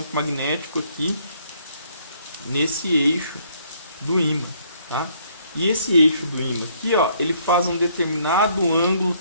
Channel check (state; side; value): inverted; both; correlation -0.65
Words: magnético aqui nesse eixo do ímã. Tá? E esse eixo do ímã aqui, ó, ele faz um determinado ângulo